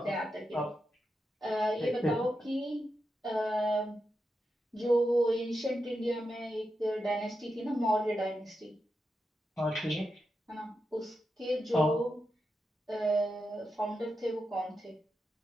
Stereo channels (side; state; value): both; normal; correlation 0.87